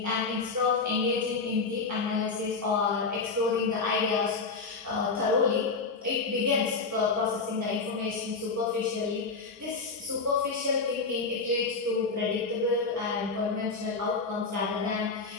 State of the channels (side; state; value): right; quieter; 4.3 dB